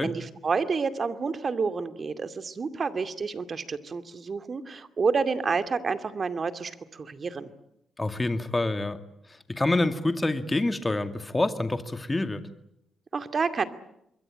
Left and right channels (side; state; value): both; normal; correlation 0.91